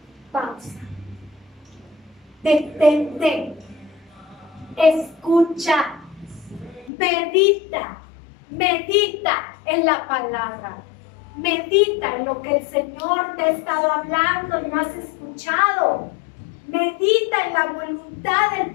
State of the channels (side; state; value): right; drops out; at 6.9 s